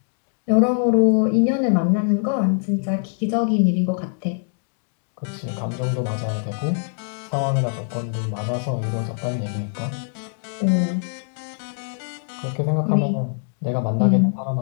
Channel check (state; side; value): silent; right; digital silence